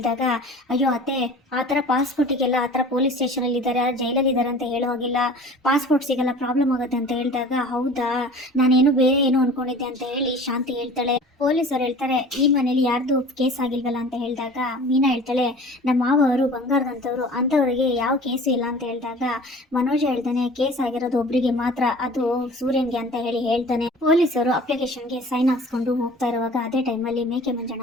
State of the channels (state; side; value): normal; both; correlation 0.43